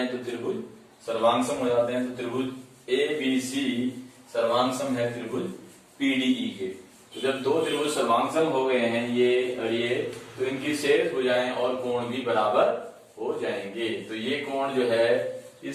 तो त्रिभुज सर्वांग सम हो जाते हैं। तो त्रिभुज ABC सर्वांग सम है त्रिभुज PDE के। तो जब दो त्रिभुज सर्वांग सम हो गए हैं ये और ये, तो इनकी शेष भुजाएं और कोण भी बराबर हो जाएंगे। तो ये कोण जो है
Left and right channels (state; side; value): identical; both; correlation 1.00